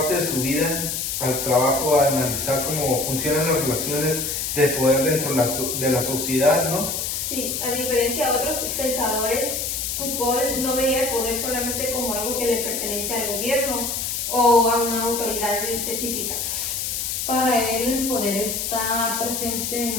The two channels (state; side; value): noise; left; hiss, 2 dB below the sound